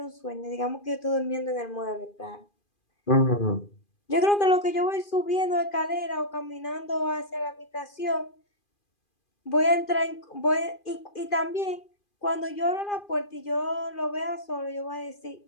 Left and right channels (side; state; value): right; late; 2.4 ms